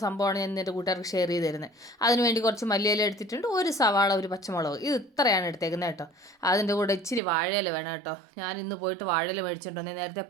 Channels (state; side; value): drops out; left; at 7.2 s